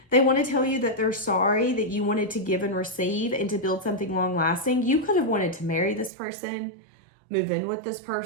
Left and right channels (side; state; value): left; drops out; at 6.1 s